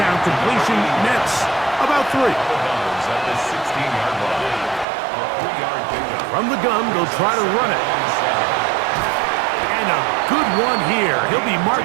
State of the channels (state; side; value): drops out; left; at 4.9 s